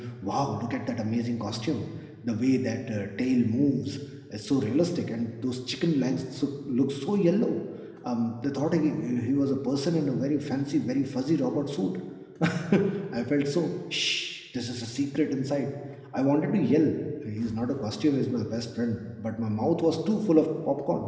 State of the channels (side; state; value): both; identical; correlation 1.00